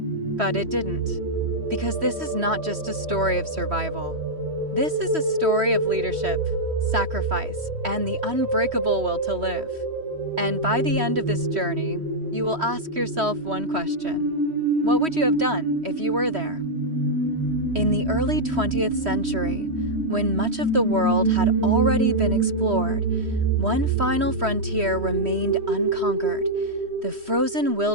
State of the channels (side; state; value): left; late; 3.1 ms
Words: but it didn't. Because this is not just a story of survival. This is a story of leadership, sacrifice, and the unbreakable will to live. And by the end of this journey, you will ask yourself one question. What would you have done if you were there? In the early 20th century, when much of the world had already been explored, one final frontier remained unconquered: the frozen